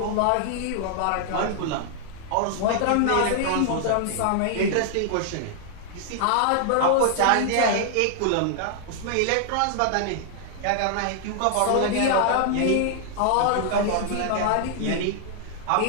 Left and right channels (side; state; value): both; different; correlation -0.01